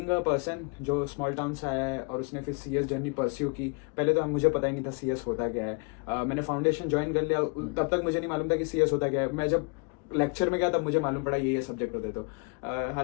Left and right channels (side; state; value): right; quieter; 32.2 dB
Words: अ पर्सन जो स्मॉल टाउन से आया है और उसने फिर सीएस जर्नी परस्यू की, पहले तो मुझे पता ही नहीं था सीएस होता क्या है। मैंने फाउंडेशन ज्वाइन कर लिया, तब तक मुझे नहीं मालूम था कि सीएस होता क्या है। मैं जब लेक्चर में गया तब मुझे मालूम पड़ा ये सब्जेक्ट होते। तो